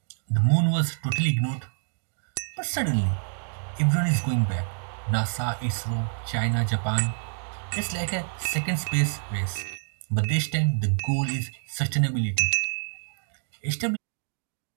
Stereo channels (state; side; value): silent; left; digital silence